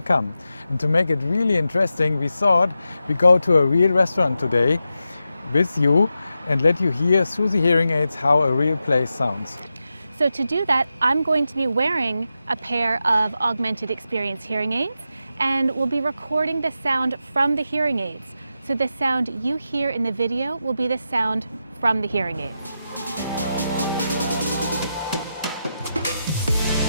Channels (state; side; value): inverted; both; correlation -0.89